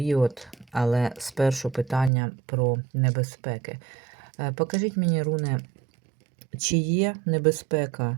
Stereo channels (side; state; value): left; drops out; at 2.1 s